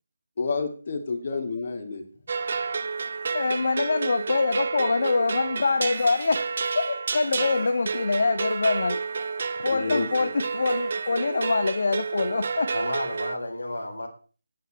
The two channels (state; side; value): inverted; both; correlation -0.91